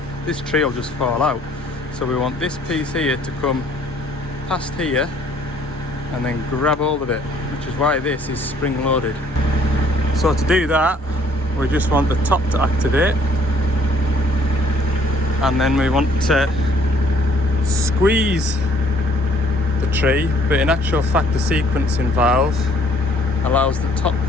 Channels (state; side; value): normal; both; correlation 0.61